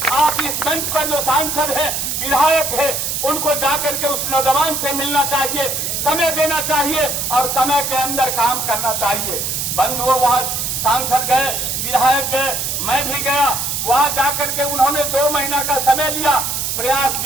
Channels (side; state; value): right; noise; hiss, 2 dB below the sound